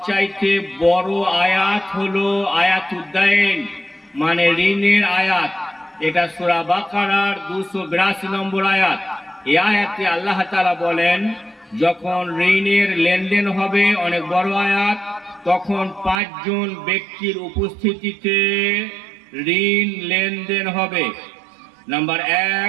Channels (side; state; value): left; drops out; at 16.2 s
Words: বড় আয়াত হলো আয়াতুদ্দাইন, মানে ঋণের আয়াত। এটা সূরা বাকারার 282 নম্বর আয়াত। এই আয়াতে আল্লাহ তাআলা বলেন, যখন ঋণের লেনদেন হবে, অনেক বড় আয়াত, তখন 5 জন ব্যক্তির উপস্থিতিতে ঋণ লেনদেন হবে। নাম্বার